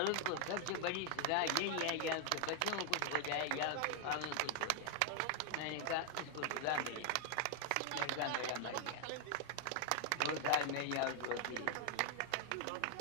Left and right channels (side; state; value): both; different; correlation 0.00